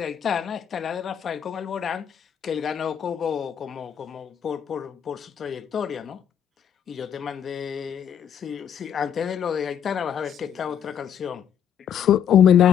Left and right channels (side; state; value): right; quieter; 8.8 dB